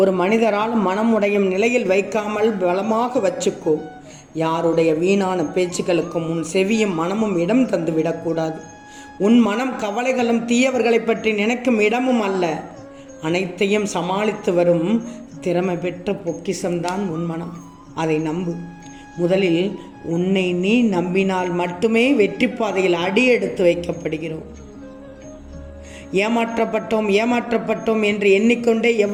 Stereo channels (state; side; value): identical; both; correlation 1.00